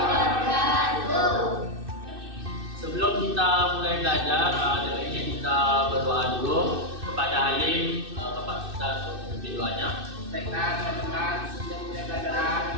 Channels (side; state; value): left; late; 2.6 ms